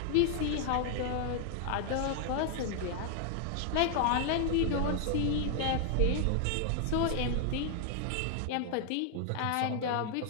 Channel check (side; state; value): both; different; correlation 0.00